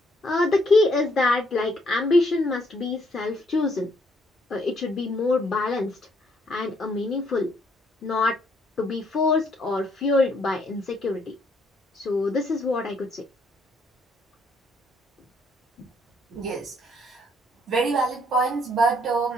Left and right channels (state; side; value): normal; both; correlation 0.69